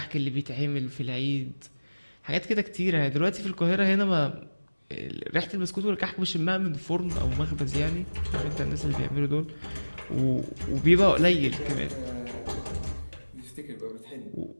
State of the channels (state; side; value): inverted; both; correlation -1.00